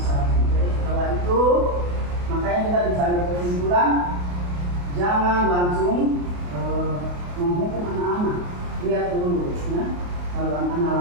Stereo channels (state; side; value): late; left; 28 ms